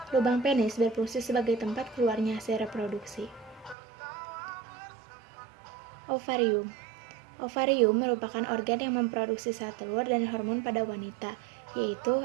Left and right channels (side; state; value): left; drops out; at 3.8 s